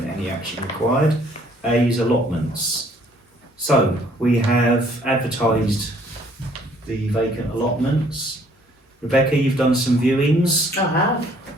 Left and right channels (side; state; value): both; normal; correlation 0.61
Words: any action required. A is allotments. So, we have advertised the vacant allotments. Rebecca, you've done some viewings, I